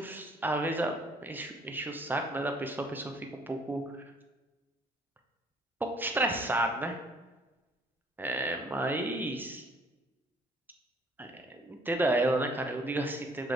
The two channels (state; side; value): normal; both; correlation 0.60